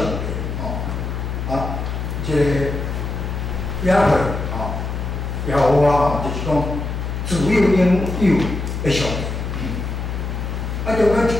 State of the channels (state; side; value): noise; left; hum, 4 dB below the sound